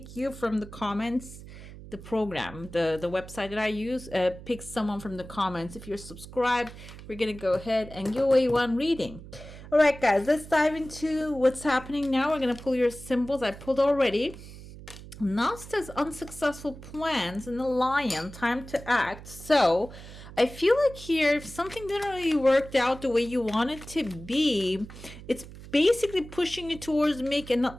you from the comments. The program, the website that I use, picks someone from the comments. If you're subscribed, we're gonna go ahead and give away one reading. All right, guys, let's dive into what's happening now. We're gonna pull your symbols. I pulled already. Now says unsuccessful plans and the lion, time to act. So I feel like here, if something didn't really work out the way you want it to be, it's basically pushing you towards making,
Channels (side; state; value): right; noise; hum, 15 dB below the sound